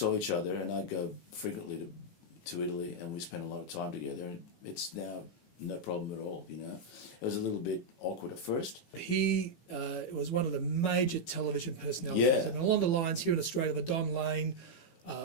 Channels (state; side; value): late; right; 18 ms